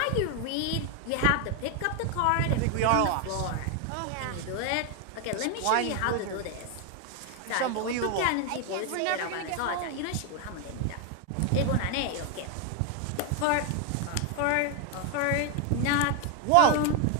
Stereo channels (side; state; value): both; different; correlation 0.01